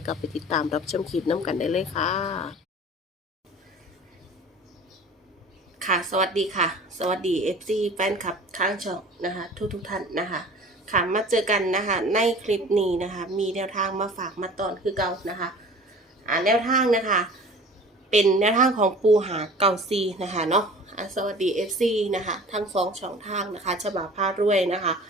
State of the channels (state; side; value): normal; both; correlation 0.43